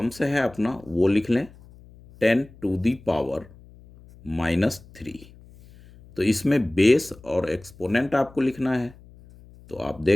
है अपना वो लिख लें 10 टू दी पावर -3। तो इसमें बेस और एक्सपोनेंट आपको लिखना है। तो आप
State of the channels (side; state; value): left; noise; hum, 23 dB below the sound